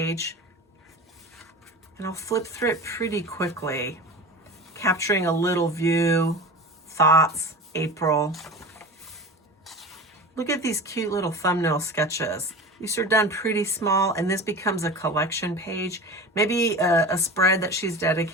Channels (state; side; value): normal; both; correlation 0.32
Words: And I'll flip through it pretty quickly, capturing a little view, thoughts, April. Look at these cute little thumbnail sketches. These are done pretty small, and this becomes a collection page, maybe a spread that she's